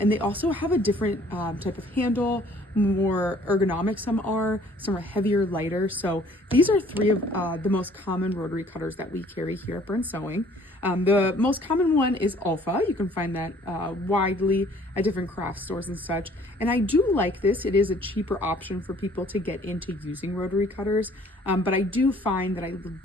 they also have a different type of handle, more ergonomic some are heavier, lighter. So these are three of the most common rotary cutters that we carry here at Burn Sewing. The most common one is Alpha. You can find that widely at different craft stores and such. And I do like this. It is a cheaper option for people to get into using rotary cutters, but I do find that I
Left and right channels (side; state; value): both; normal; correlation 0.57